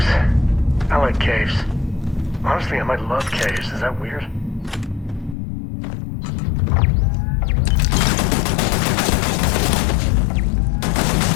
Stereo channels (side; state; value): right; drops out; at 5.4 s